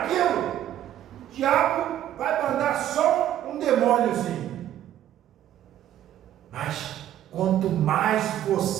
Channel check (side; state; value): left; quieter; 11.8 dB